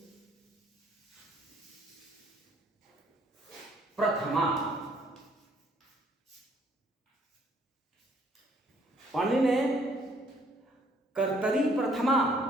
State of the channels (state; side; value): normal; both; correlation 0.64